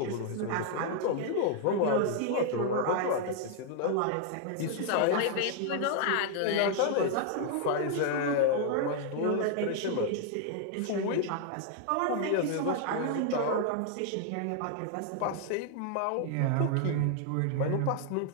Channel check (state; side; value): different; both; correlation 0.00